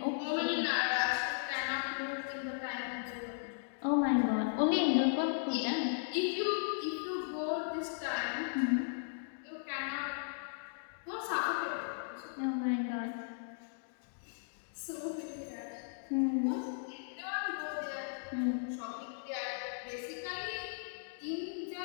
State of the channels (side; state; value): right; silent; digital silence